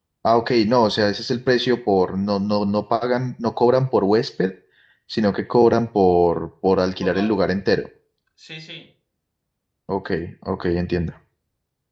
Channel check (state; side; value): identical; both; correlation 1.00